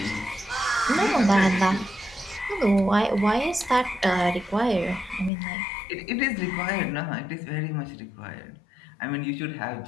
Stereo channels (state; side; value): drops out; right; at 5.3 s